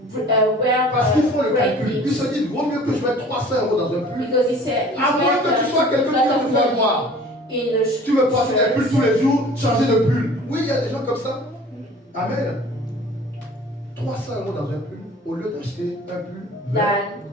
wear Parce qu'ils font le great calcul. Ils things. se disent, vaut mieux que je mette 300 euros dans un pull. Because he said, it's À moins que better tu sois to quelqu'un put a qui lot va of te faire money voir. in the Tu veux porter des pulls shirts tous les jours, changer de pull. Oui, il y a des gens comme ça. Amen. 300 euros dans un pull, au lieu d'acheter un pull, 20, than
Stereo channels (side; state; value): both; normal; correlation 0.47